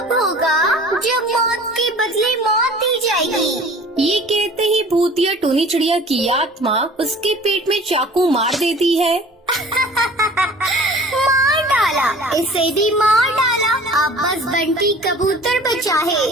भूतिया टूनी चिड़िया की आत्मा उसके पेट में चाकू मार देती है। मार डाला, इसे भी मार डाला। अब बस बंटी कबूतर बचा है,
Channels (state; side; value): normal; both; correlation 0.46